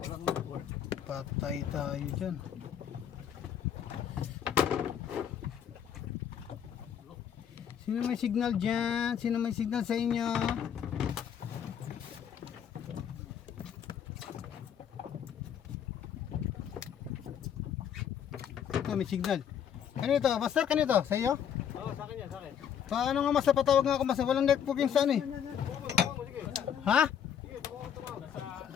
network. Patay tayo dyan. Sino may signal dyan? Sino may signal sa inyo? Ito may signal. Kanito? Master, kanito? Sa iyo? Oo, sa akin yan, sa akin. Paano nga master? Patawag nga ako master. Walang network yung sa ano eh. Sige. Ha? Sige, tumawag.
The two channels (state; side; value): quieter; right; 8.6 dB